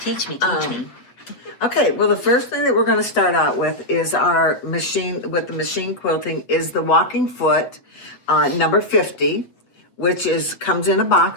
Teach me. Okay, well, the first thing that we're going to start out with is our machine, with the machine quilting, is the walking foot number 50, which comes in a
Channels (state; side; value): late; right; 8.3 ms